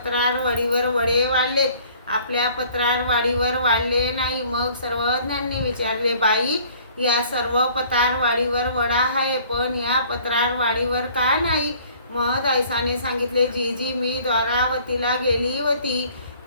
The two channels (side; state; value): both; inverted; correlation -0.55